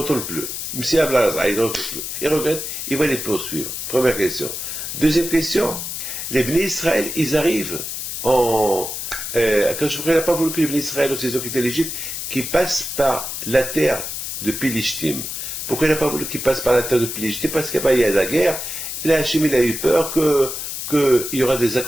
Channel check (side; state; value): left; noise; hiss, 5 dB below the sound